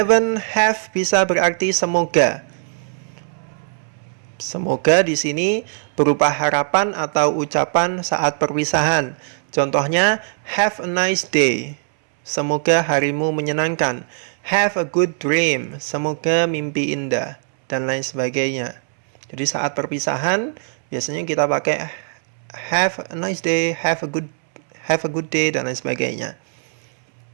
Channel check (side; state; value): left; silent; 64 dB below the other